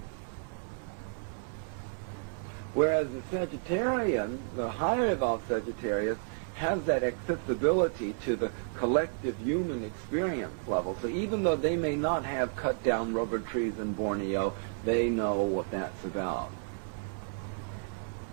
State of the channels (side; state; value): left; silent; 57 dB below the other